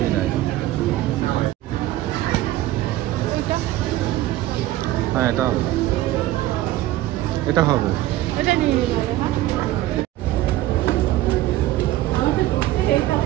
হ্যাঁ, এটা হবে। এটা নিয়ে নিব।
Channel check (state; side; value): quieter; left; 15.4 dB